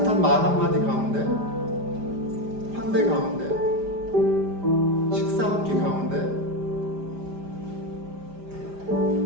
말 한마디 가운데, 환대 가운데, 식사 한 끼 가운데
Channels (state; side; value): late; left; 5.0 ms